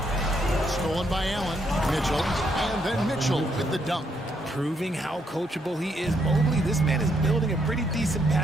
Stolen by Allen. Mitchell. And then Mitchell with the dunk. Proving how coachable he is. Mobley, this man is building a pretty decent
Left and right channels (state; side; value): normal; both; correlation 0.75